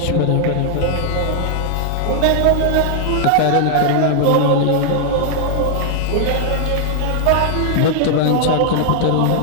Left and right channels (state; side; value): different; both; correlation 0.00